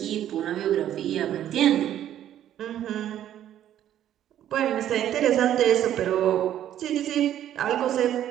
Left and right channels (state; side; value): quieter; left; 11.3 dB